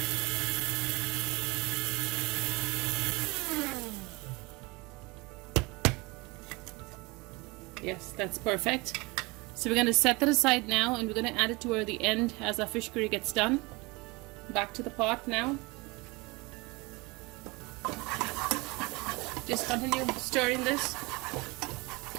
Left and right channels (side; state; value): left; quieter; 25.1 dB